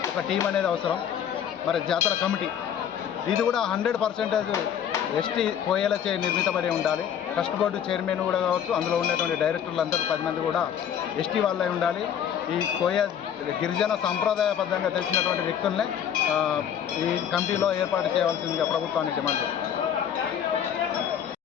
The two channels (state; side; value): quieter; right; 9.0 dB